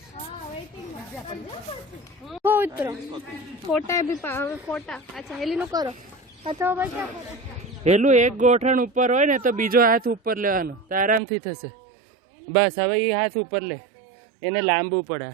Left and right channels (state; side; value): drops out; left; at 11.2 s